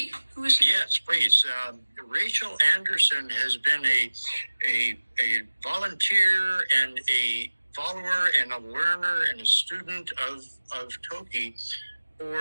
Yes, please. Rachael Andersen has been a volunteer and a follower and a learner and a student of Toki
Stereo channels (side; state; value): both; inverted; correlation -1.00